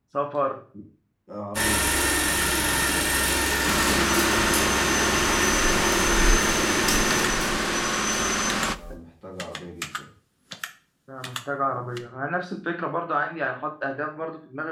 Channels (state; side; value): identical; both; correlation 1.00